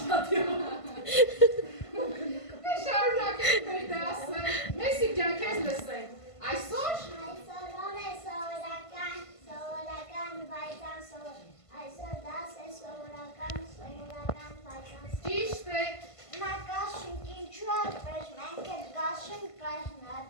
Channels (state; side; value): late; right; 1.5 ms